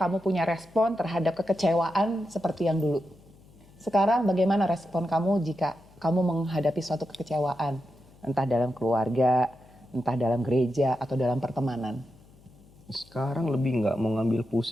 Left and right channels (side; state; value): left; noise; hum, 26 dB below the sound